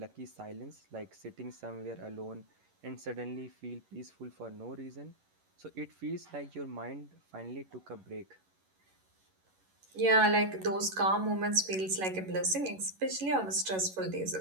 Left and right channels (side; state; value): left; late; 11 ms